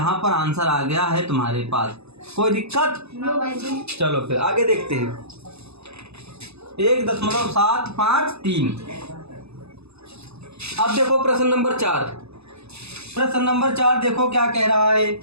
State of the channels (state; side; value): late; left; 0.79 ms